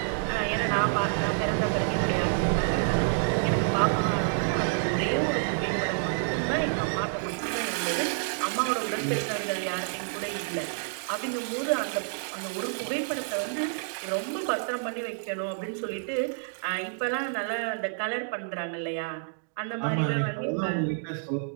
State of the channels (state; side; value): silent; left; digital silence